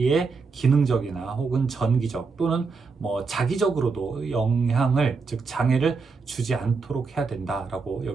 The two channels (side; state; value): left; quieter; 4.6 dB